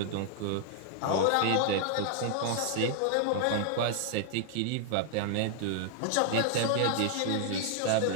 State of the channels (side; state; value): both; different; correlation 0.00